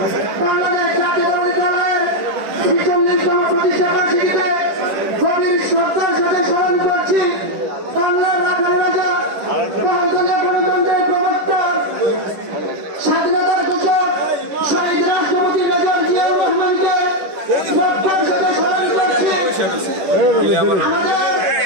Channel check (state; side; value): late; left; 10 ms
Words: বাংলাদেশ জাতীয়তাবাদী দলের 46তম প্রতিষ্ঠা বার্ষিকীতে গভীর শ্রদ্ধার সাথে স্মরণ করছি বাংলার রাখাল রাজা বহুদলীয় গণতন্ত্রের প্রবক্তা স্বাধীনতার ঘোষক শহীদ রাষ্ট্রপতি মেজর জিয়াউর রহমানকে শ্রদ্ধার সাথে স্মরণ করছি। আমাদের